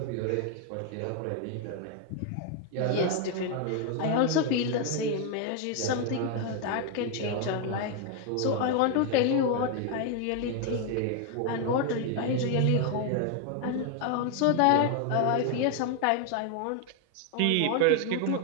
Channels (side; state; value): both; different; correlation 0.01